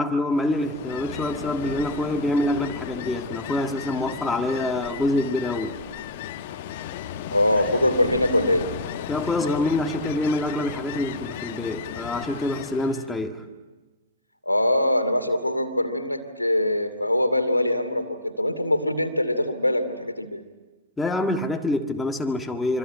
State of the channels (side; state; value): both; normal; correlation -0.15